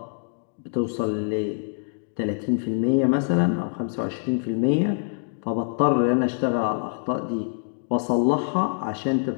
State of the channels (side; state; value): right; silent; digital silence